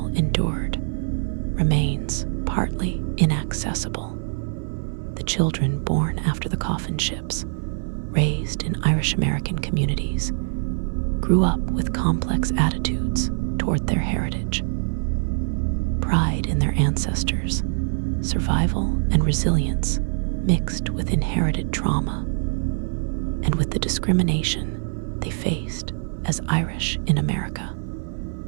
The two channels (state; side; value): silent; left; 56 dB below the other